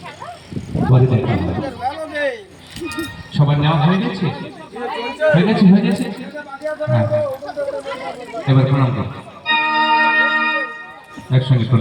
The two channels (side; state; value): both; identical; correlation 1.00